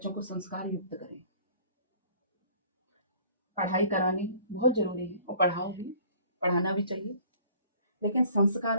को संस्कार युक्त करें। पढ़ाई करानी बहुत जरूरी है और पढ़ाओ भी, पढ़ाना भी चाहिए, लेकिन संस्कार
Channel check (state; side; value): inverted; both; correlation -0.53